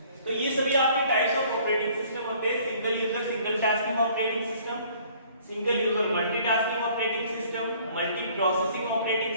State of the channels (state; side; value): inverted; both; correlation -0.56